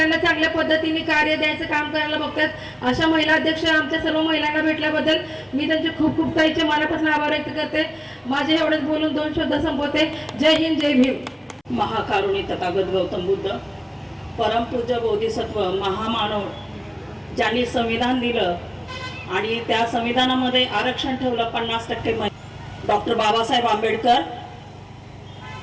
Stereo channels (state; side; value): identical; both; correlation 1.00